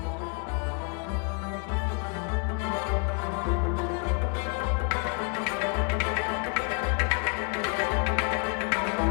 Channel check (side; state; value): right; quieter; 37.3 dB